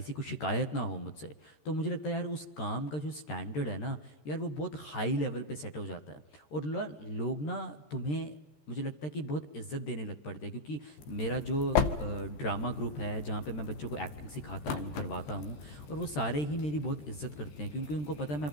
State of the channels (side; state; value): right; late; 13 ms